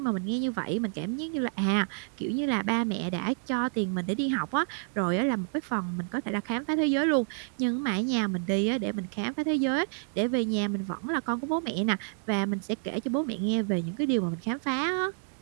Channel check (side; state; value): left; silent; digital silence